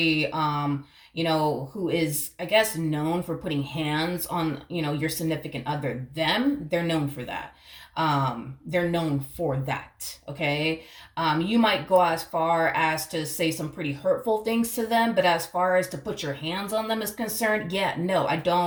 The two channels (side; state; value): both; identical; correlation 1.00